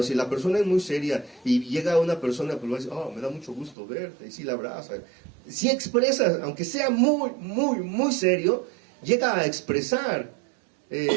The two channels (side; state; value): left; drops out; at 3.8 s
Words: si la persona es muy seria y llega una persona, pues va a decir, oh, me da mucho gusto verte, y sí la abraza. Si expresas, aunque sea muy, muy, muy serio, llega a expresar